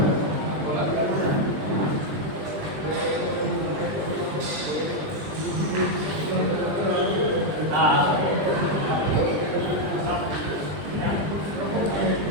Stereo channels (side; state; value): left; late; 20 ms